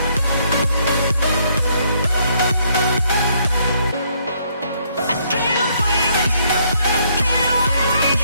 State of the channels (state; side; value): inverted; both; correlation -0.70